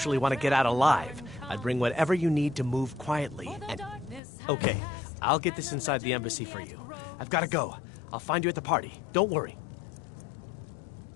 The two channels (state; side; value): drops out; right; at 4.2 s